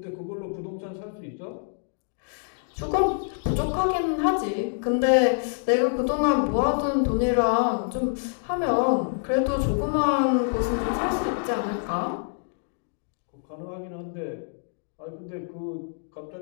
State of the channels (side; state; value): right; silent; digital silence